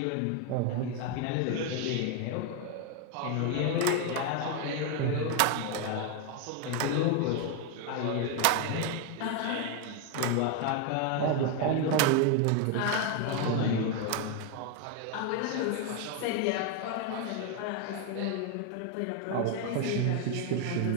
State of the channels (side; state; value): both; different; correlation 0.01